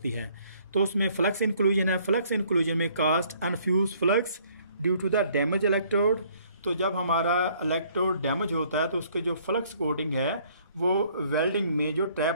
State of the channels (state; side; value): inverted; both; correlation -0.62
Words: है। तो उसमें फ्लक्स इंक्लूजन है। फ्लक्स इंक्लूजन में cast unfused flux due to the damage electrode. तो जब हमारा इलेक्ट्रोड डैमेज होता है तो उसके जो फ्लक्स कोटिंग है वो वेल्डिंग में जो